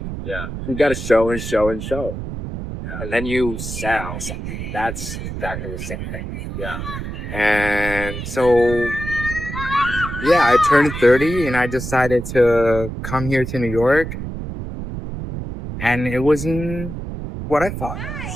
You got to show and show and show, and then you sell something. That's exactly the same thing. Yeah. And so, yeah, I turned 30 and I decided to come here to New York, and it wasn't what I thought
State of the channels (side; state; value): right; noise; rumble, 7 dB below the sound